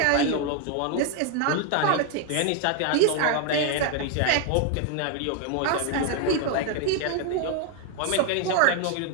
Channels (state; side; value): different; both; correlation 0.01